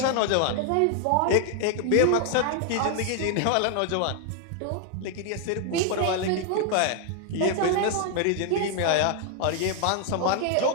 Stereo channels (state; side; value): different; both; correlation 0.00